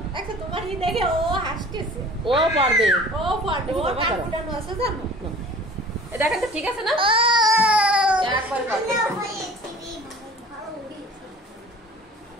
দেখো তোমার ই দেখে ও হাসতেছে। ও পারবে। ও পারবে। ও কান ফুটানো আছে জানো? এই দেখেন তো ঠিক আছে না? একবার পারবে।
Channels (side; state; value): both; normal; correlation 0.46